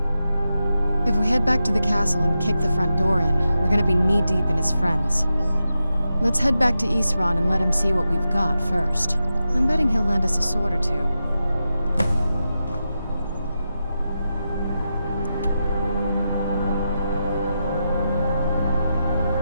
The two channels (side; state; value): both; inverted; correlation -0.89